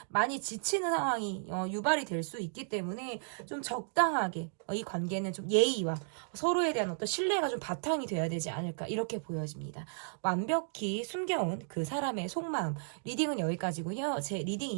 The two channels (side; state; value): left; silent; digital silence